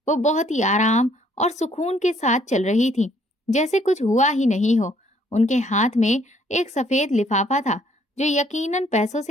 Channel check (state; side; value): normal; both; correlation 0.64